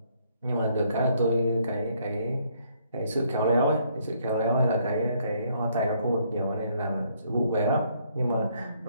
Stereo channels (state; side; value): inverted; both; correlation -0.68